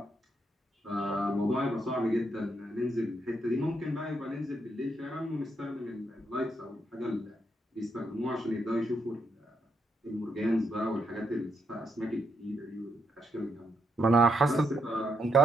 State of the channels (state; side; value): normal; both; correlation 0.79